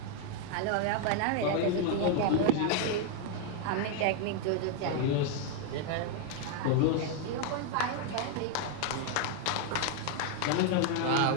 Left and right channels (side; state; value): both; different; correlation 0.00